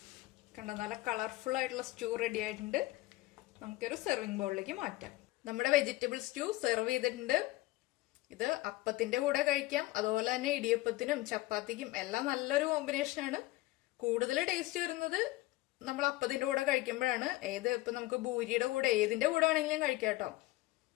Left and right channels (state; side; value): quieter; right; 19.0 dB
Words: കണ്ടോ, നല്ല കളർഫുൾ ആയിട്ടുള്ള സ്റ്റൂ റെഡി ആയിട്ടുണ്ട്. നമുക്കൊരു സെർവിങ് ബൗളിലേക്ക് മാറ്റാം. നമ്മുടെ വെജിറ്റബിൾ സ്റ്റൂ സെർവ് ചെയ്തിട്ടുണ്ട്. ഇത് അപ്പത്തിന്റെ കൂടെ കഴിക്കാം, അതുപോലെ തന്നെ ഇടിയപ്പത്തിനും ചപ്പാത്തിക്കും എല്ലാം നല്ലൊരു കോമ്പിനേഷനാണ്. കൂടുതൽ ടേസ്റ്റ് വരുന്നത് നമ്മൾ അപ്പത്തിന്റെ കൂടെ കഴിക്കുമ്പോഴാണ്. ഇപ്പൊ നമുക്ക് ഭൂരിയുടെ കൂടെ ഏതിന്റെ കൂടെ ആണെങ്കിലും കഴിക്കാം കേട്ടോ.